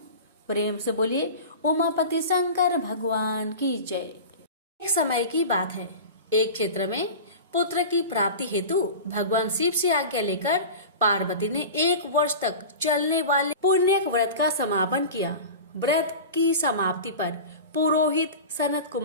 प्रेम से बोलिए, उमापति शंकर भगवान की जय। एक समय की बात है, एक क्षेत्र में पुत्र की प्राप्ति हेतु भगवान शिव से आज्ञा लेकर पार्वती ने 1 वर्ष तक चलने वाले पुण्य व्रत का समापन किया। व्रत की समाप्ति पर पुरोहित सनत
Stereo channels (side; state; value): both; inverted; correlation -0.32